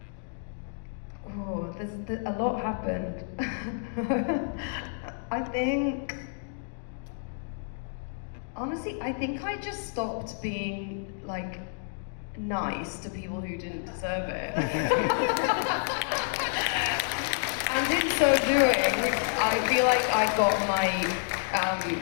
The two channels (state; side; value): silent; right; digital silence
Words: Oh, a lot happened. Honestly, I think I just stopped being like nice to people who didn't deserve it. And in so doing, I feel like I got